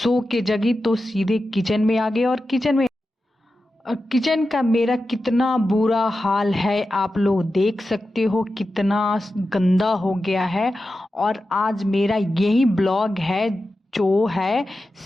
के जगी तो सीधे किचन में आ गई और किचन का मेरा कितना बुरा हाल है आप लोग देख सकते हो, कितना गंदा हो गया है। और आज मेरा यही ब्लॉग है जो है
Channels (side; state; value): both; normal; correlation 0.92